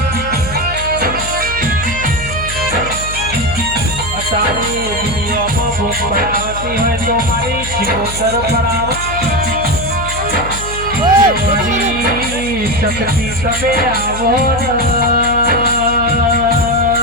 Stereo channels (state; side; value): noise; left; hum, 10 dB below the sound